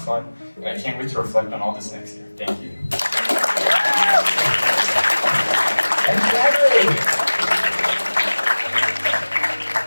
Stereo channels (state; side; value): inverted; both; correlation -1.00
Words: fun, and I can't wait to reflect on all this next year. Thank you.